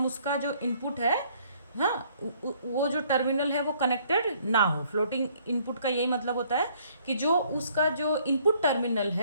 उसका जो इनपुट है, हाँ, वो जो टर्मिनल है वो कनेक्टेड ना हो। फ्लोटिंग इनपुट का यही मतलब होता है कि जो उसका जो इनपुट टर्मिनल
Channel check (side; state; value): both; inverted; correlation -0.63